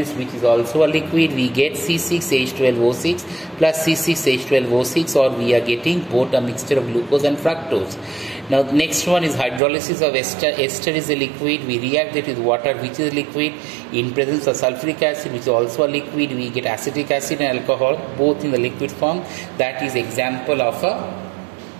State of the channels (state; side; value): drops out; left; at 9.6 s